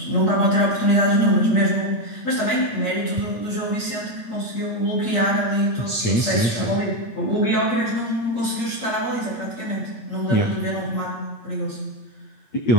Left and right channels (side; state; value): right; late; 8.5 ms